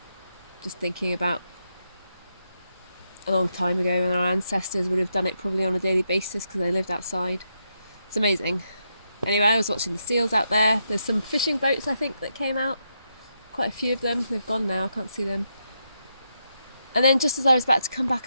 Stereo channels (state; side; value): inverted; both; correlation -0.82